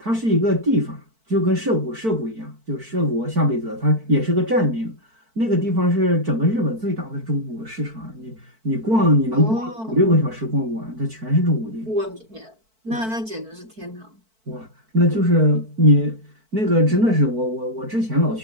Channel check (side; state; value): left; late; 4.5 ms